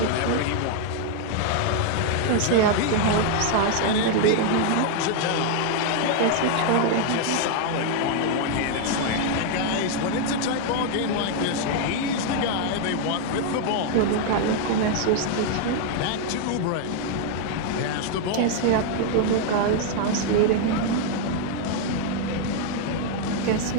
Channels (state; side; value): different; both; correlation 0.00